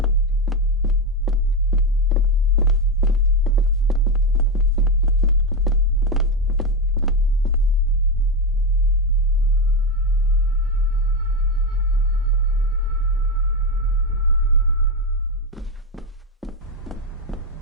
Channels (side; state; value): both; normal; correlation 0.11